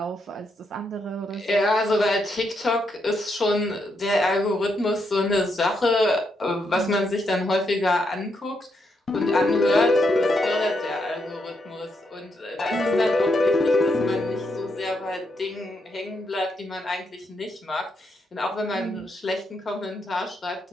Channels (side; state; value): both; normal; correlation 0.79